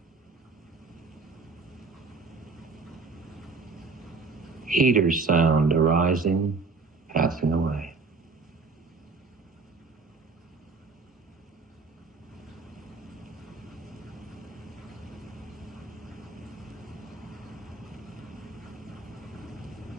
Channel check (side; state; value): left; quieter; 4.1 dB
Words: Heater sound arising, passing away.